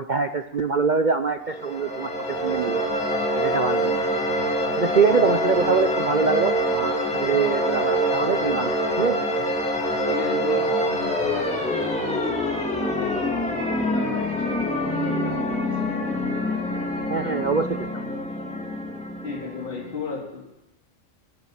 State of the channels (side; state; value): both; normal; correlation 0.23